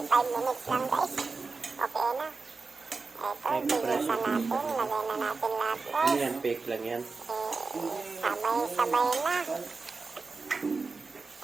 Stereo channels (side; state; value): left; quieter; 4.2 dB